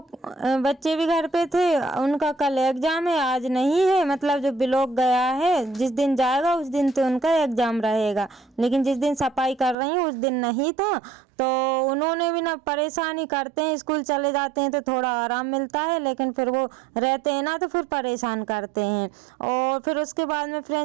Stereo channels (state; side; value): drops out; left; at 9.8 s